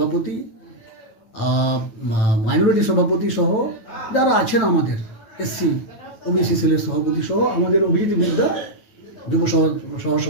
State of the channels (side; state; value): right; late; 9.0 ms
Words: মাইনরিটি সভাপতি সহ যারা আছেন, আমাদের এসসি ওবিসি সেলের সভাপতি সহ আমাদের অভিজিৎ বিদ্যা যুব সহ